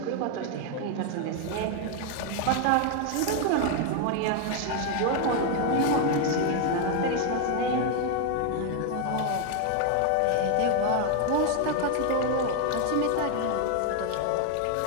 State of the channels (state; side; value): different; both; correlation 0.01